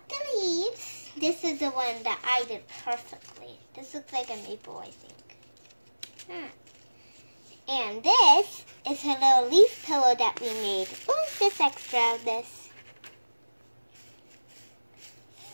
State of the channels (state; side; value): inverted; both; correlation -1.00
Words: the leaves. This is the one that I did perfectly. This looks like a maple, I think. And this is her little leaf pillow that we made. Oh, just extra of this.